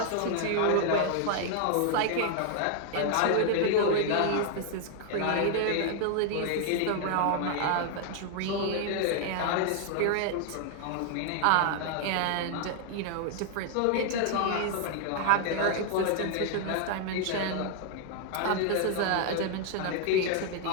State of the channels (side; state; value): both; different; correlation 0.00